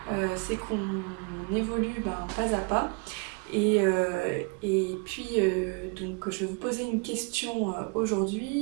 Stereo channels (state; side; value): quieter; left; 33.1 dB